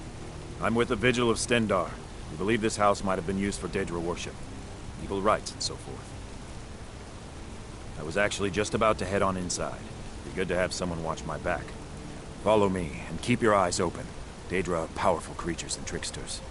I'm with the Vigil of Stendar. We believe this house might have been used for Daedra worship, evil rites, and so forth. I was actually just about to head on inside. Be good to have someone watch my back. Follow me, and keep your eyes open. Daedra are powerful creatures and tricksters.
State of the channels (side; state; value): both; identical; correlation 1.00